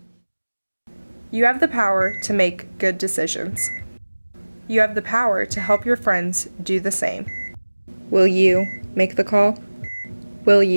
You have the power to make good decisions. You have the power to help your friends do the same. Will you make the call? Will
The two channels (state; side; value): inverted; both; correlation -1.00